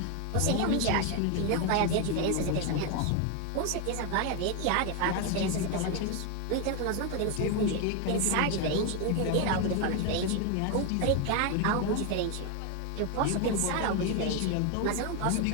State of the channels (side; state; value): both; different; correlation 0.01